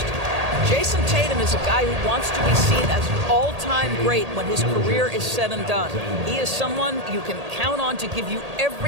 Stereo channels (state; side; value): late; left; 1.8 ms